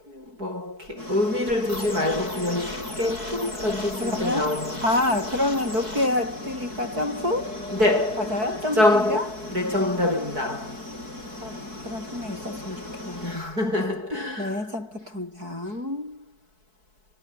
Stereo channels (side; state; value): left; late; 4.6 ms